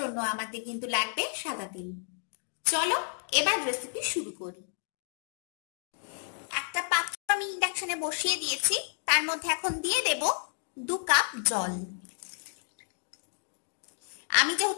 আমাদের কিন্তু লাগবে সাদা তেল। চলো এবার রেসিপি শুরু করি। একটা পাত্র আমি ইন্ডাকশনে বসিয়ে দিয়েছি, তার মধ্যে এখন দিয়ে দেব 2 কাপ জল। আমি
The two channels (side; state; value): right; silent; 57 dB below the other